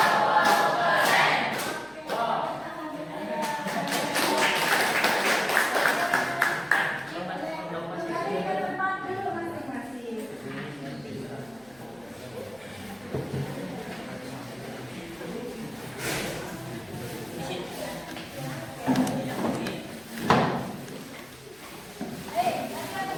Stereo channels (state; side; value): noise; left; hum, 28 dB below the sound